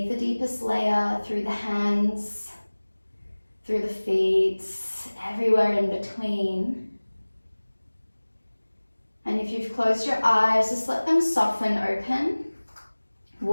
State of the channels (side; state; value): both; inverted; correlation -1.00